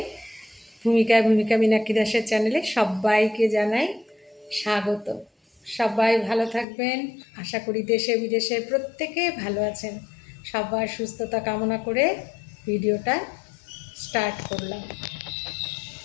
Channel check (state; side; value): drops out; right; at 6.7 s